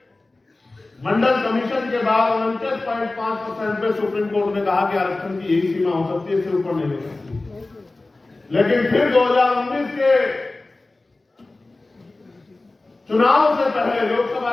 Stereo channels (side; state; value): right; quieter; 3.1 dB